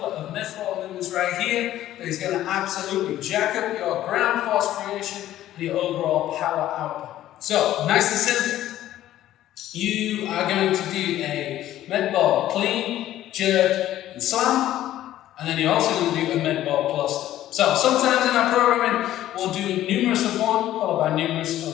of med ball movements right here that is going to absolutely jack up your ground force creation and your overall power output. So, nice and simple. You are going to do a med ball clean, jerk, and slam, and then you're also going to do a med ball cluster. So, sometimes in our programming, we'll do numerous of one, followed by numerous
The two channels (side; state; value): right; quieter; 13.3 dB